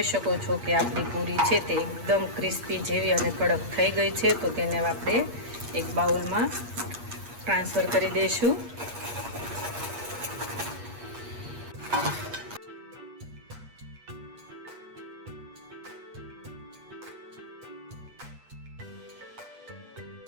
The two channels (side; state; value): left; late; 8.4 ms